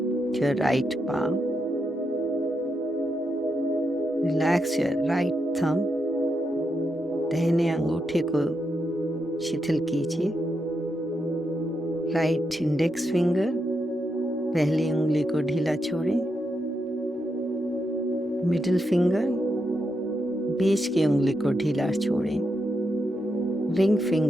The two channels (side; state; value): both; normal; correlation 0.83